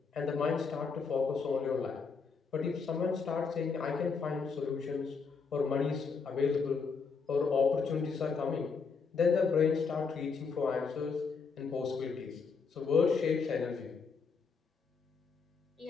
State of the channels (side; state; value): right; quieter; 5.2 dB